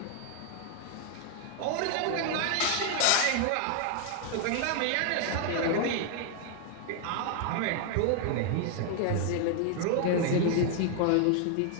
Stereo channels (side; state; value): both; different; correlation 0.00